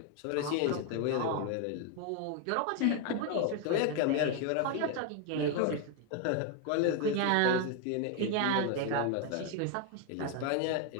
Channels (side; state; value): both; different; correlation 0.01